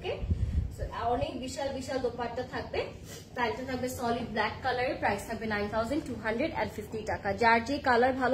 so অনেক বিশাল বিশাল দোপাট্টা থাকবে। প্রাইসটা থাকবে সলিড ব্ল্যাক কালারের, প্রাইস থাকবে 9250 টাকা। যার যে কালার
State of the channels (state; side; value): identical; both; correlation 1.00